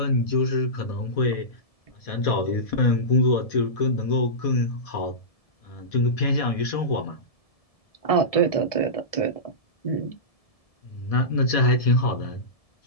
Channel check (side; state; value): right; late; 1.7 ms